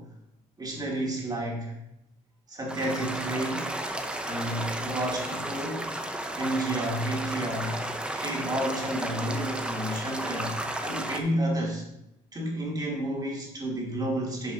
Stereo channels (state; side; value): normal; both; correlation 0.61